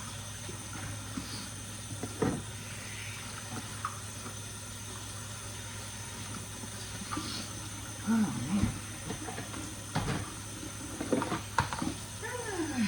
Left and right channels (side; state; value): both; identical; correlation 1.00